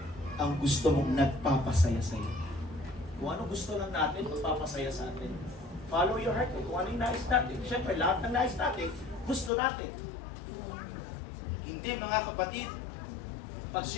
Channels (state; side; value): drops out; right; at 9.5 s